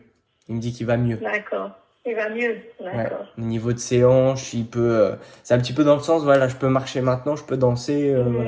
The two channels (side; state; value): both; identical; correlation 1.00